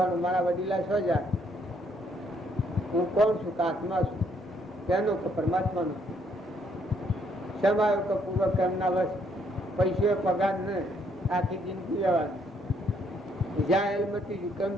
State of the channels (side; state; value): both; normal; correlation 0.70